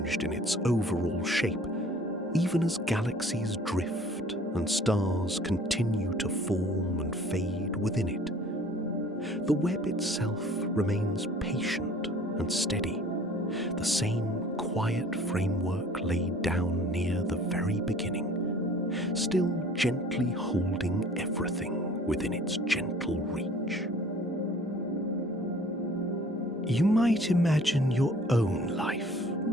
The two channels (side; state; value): both; normal; correlation 0.51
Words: in its overall shape, even as galaxies drift and stars continue to form and fade within it. The web itself remains patient and steady, the same quiet framework laid down near the very beginning, still gently holding everything within its gentle reach. You might imagine your own life